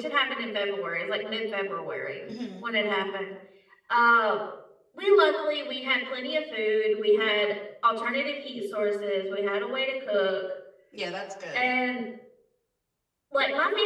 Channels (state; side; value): identical; both; correlation 1.00